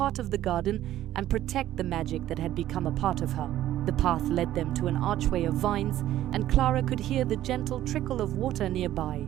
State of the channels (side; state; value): left; quieter; 13.2 dB